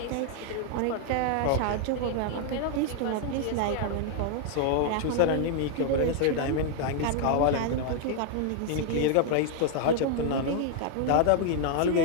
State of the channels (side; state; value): both; different; correlation 0.00